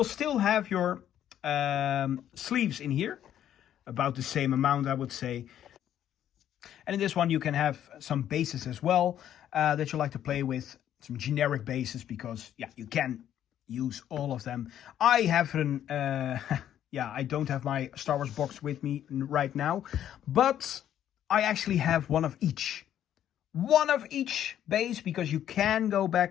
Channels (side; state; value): right; quieter; 10.8 dB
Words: still have your sleeves in here. About the same amount, I would say. And in this one, you can have some bases as well that you like to play with. Some generic bases, because, yeah, you can use all of them. I have an, I don't have my Star Wars box with me right now. But I actually have one of each. One of each base, because you can go